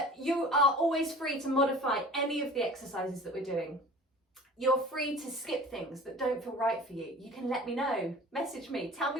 you are always free to modify any of the exercises that we're doing. You're free to skip things that don't feel right for you. You can let me know, message me, tell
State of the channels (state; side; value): normal; both; correlation 0.42